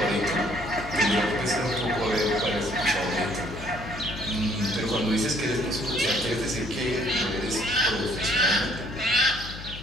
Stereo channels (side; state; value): left; noise; hum, 11 dB below the sound